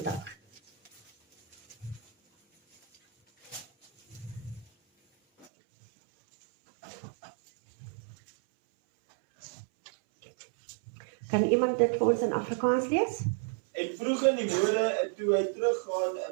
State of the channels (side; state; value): left; drops out; at 5.5 s